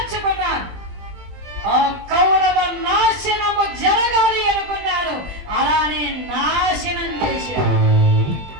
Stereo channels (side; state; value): left; late; 20 ms